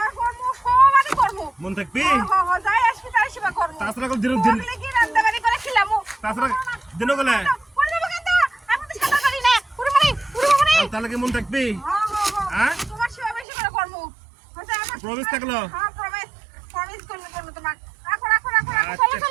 করবো সবারই করবো মন থাকবি যাই আসবি তাই সেবা করবো তাছাড়া দিন ওগুলো কি রান্না বাড়ি করে খেলাম তাছাড়া দিনও গেলে আমি তো সাঁতার পারি না পুরো মানে তাহলে কি মন থাকবি হ্যাঁ তোমার সেবা বেশি করে করবো প্রমিস থাকলো হ্যাঁ প্রমিস করলে করবো তোমার রাখো আচ্ছা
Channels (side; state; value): left; drops out; at 13.5 s